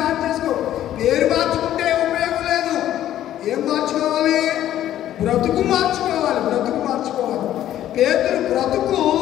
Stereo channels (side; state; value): right; quieter; 12.2 dB